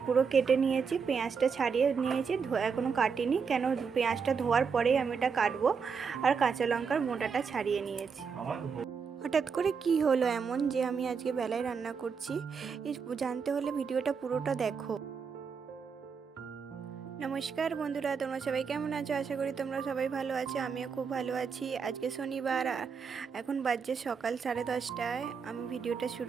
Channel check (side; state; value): left; quieter; 5.9 dB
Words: পুরো কেটে নিয়েছি, পেঁয়াজটা ছাড়িয়ে নিয়েছি, এখনও কাটিনি কেন পেঁয়াজটা ধোয়ার পরেই আমি এটা কাটবো। আর কাঁচা লঙ্কার মোটাটা ছাড়িয়ে নিয়েছি। হঠাৎ করে কি হলো এমন যে আমি আজকে বেলায় রান্না করছি, জানতে হলে ভিডিওটা পুরোটা দেখো। নমস্কার বন্ধুরা, তোমরা সবাই কেমন আছো? আশা করি তোমরা সবাই ভালো আছো, আমিও খুব ভালো আছি। আজকে শনিবার, এখন বাজছে সকাল 10:30টায় আমি ভিডিওটা